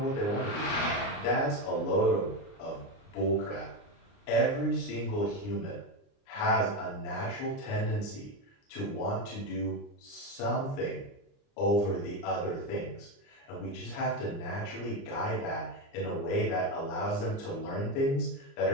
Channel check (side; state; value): right; late; 29 ms